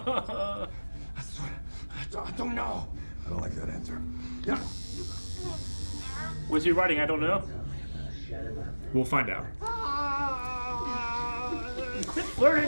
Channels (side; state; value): both; inverted; correlation -1.00